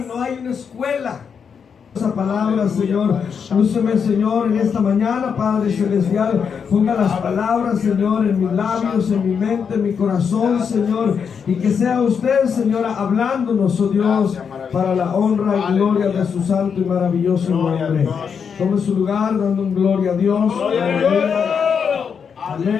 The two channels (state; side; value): quieter; right; 6.6 dB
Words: No hay una escuela. Esa palabra, Señor, lúceme, Señor, en esta mañana, Padre Celestial. Ponga las palabras, Señor, en mis labios, en mi mente, en mi corazón, Señor. Y que sea usted, Señora, hablándonos, oh Dios, para la honra y gloria de su santo y maravilloso nombre. Tome su lugar, dando un gloria a Dios.